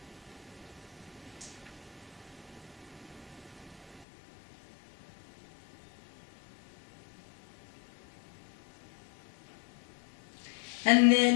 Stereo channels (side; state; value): right; drops out; at 4.0 s